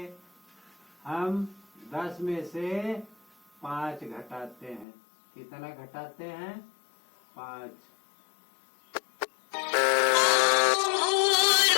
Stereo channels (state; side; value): drops out; right; at 4.9 s